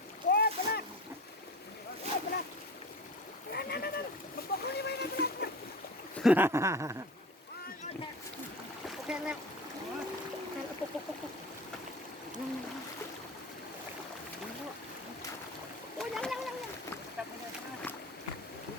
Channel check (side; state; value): both; normal; correlation 0.33